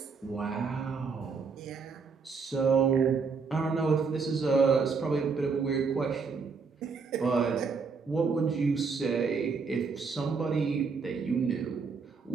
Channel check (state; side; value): quieter; left; 5.0 dB